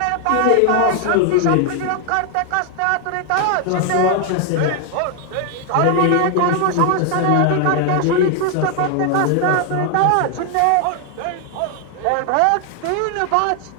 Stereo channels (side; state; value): both; different; correlation 0.00